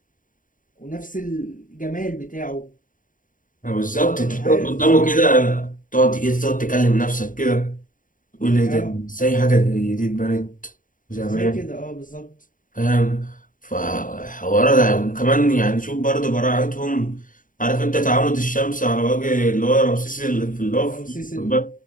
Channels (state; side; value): late; right; 0.39 ms